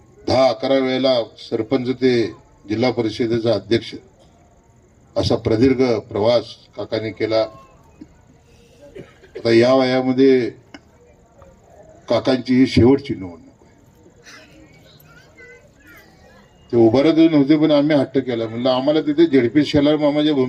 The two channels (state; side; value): identical; both; correlation 1.00